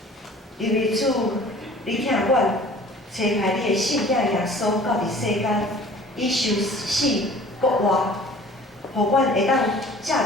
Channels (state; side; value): normal; both; correlation 0.48